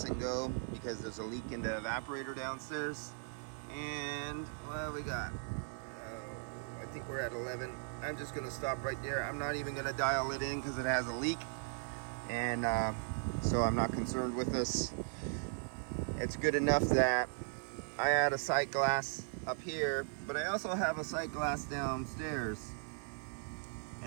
and go because there's a leak in the evaporator downstairs. And well, we got, I think we're at 11. I'm just gonna stop right there. I'm not even gonna dial it in because it has a leak. And so I'm not concerned with this. It's good enough that I add a sight glass up here, but I also have a sight glass downstairs.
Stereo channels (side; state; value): left; silent; 52 dB below the other